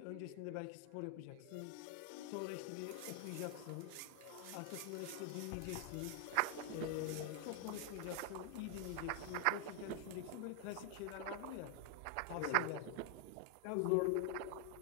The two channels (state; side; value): different; both; correlation 0.00